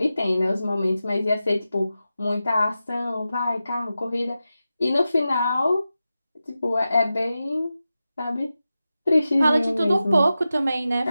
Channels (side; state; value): both; inverted; correlation -0.92